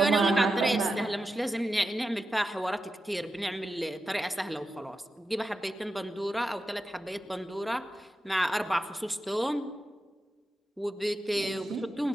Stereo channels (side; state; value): both; normal; correlation 0.90